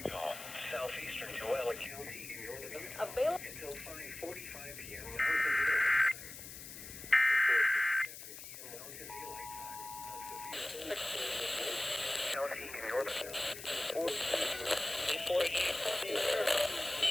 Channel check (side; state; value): left; noise; hiss, 12 dB below the sound